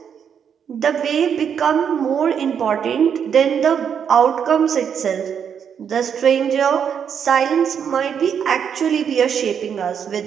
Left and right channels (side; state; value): left; quieter; 7.7 dB